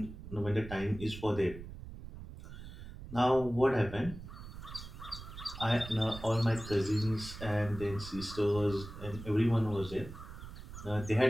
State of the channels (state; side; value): noise; right; rumble, 12 dB below the sound